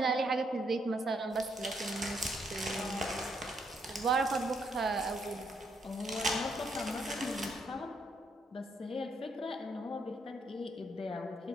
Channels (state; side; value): normal; both; correlation 0.74